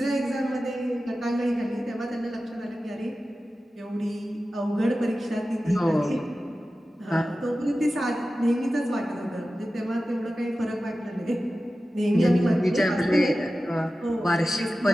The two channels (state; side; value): normal; both; correlation 0.94